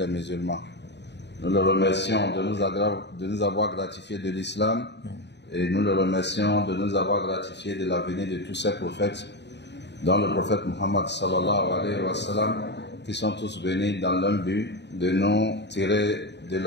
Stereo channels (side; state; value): right; late; 0.50 ms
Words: musulmans. Nous le remercions de nous avoir gratifié de l'islam et nous le remercions de nous avoir gratifié de la venue de tous ces prophètes, dont le prophète Muhammad sallallahu alayhi wa sallam, qui sont tous venus dans l'un but de nous tirer de